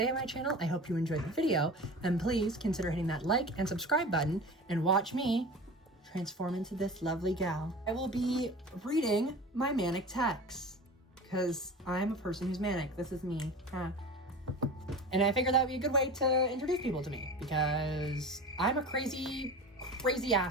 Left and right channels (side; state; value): both; normal; correlation 0.34